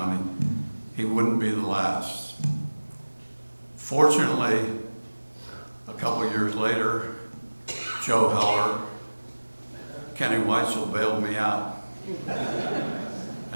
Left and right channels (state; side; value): inverted; both; correlation -1.00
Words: he wouldn't be the last. Fortunately, a couple years later, Joe Heller, Kenny Weitzel bailed me out.